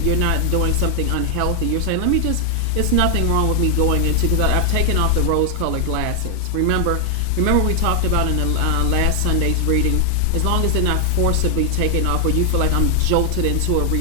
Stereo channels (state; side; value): different; both; correlation 0.00